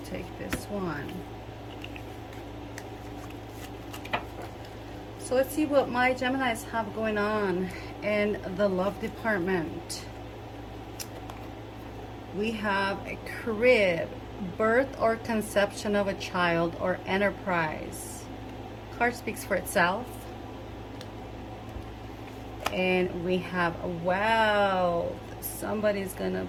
take this one. So let's see what my Geminis have going on in the love department. We have a crib, birth or conception of a child, or enterprise. Card speaks for itself. And we have wealth. Somebody's gonna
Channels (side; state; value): both; identical; correlation 1.00